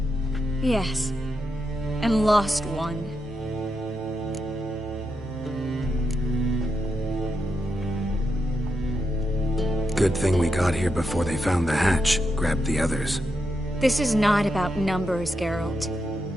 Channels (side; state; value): both; normal; correlation 0.84